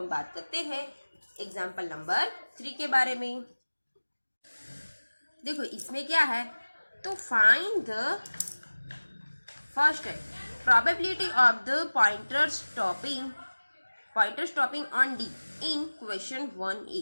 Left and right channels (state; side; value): inverted; both; correlation -1.00